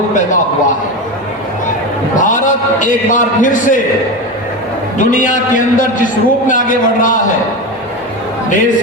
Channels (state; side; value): normal; both; correlation 0.21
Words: पैदा हुआ है। भारत एक बार फिर से दुनिया के अंदर जिस रूप में आगे बढ़ रहा है, देश